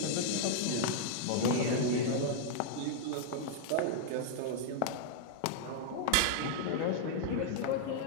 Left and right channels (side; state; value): both; different; correlation -0.01